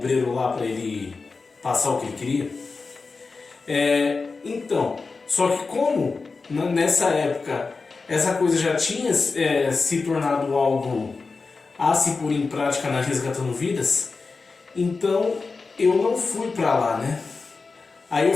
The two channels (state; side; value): quieter; right; 4.3 dB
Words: lá para ele passar o que ele queria. Então, só que como nessa época essa coisa já tinha se tornado algo a se pôr em prática na Resgatando Vidas, então eu não fui para lá, né? Aí eu